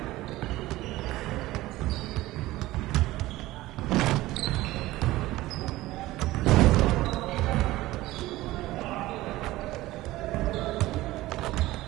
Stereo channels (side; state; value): left; quieter; 17.5 dB